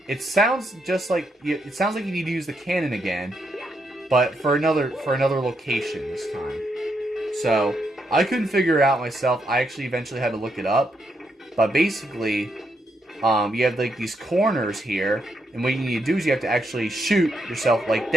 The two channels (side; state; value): both; normal; correlation 0.79